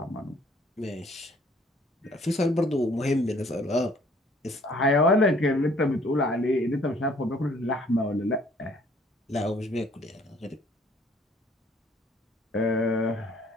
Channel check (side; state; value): both; normal; correlation 0.59